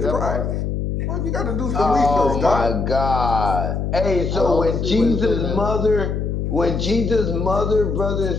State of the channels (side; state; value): left; noise; hum, 2 dB below the sound